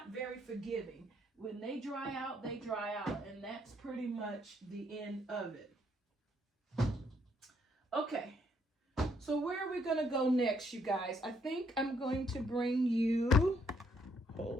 very forgiving. When they dry out, they dry out. And that's pretty much the end of it. Okay. So where are we going to go next, you guys? I think I'm going to bring you,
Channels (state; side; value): normal; both; correlation 0.70